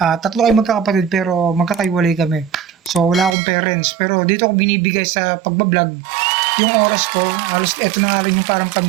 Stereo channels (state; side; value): drops out; left; at 3.4 s